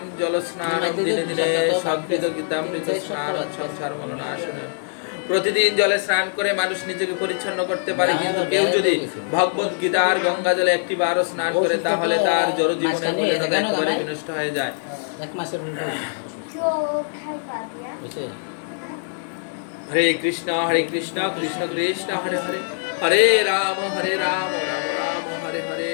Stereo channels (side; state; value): right; silent; digital silence